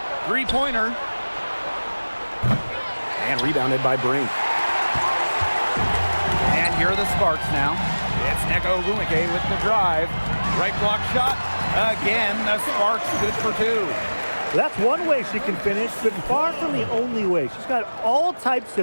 Three-pointer. And rebounded by Brink. And here are the Sparks now. It's Neko Ogumake with the drive. Right block shot. Again, the Sparks good for 2. Well, that's one way she can finish, but far from the only way. She's got all types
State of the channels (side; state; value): both; inverted; correlation -1.00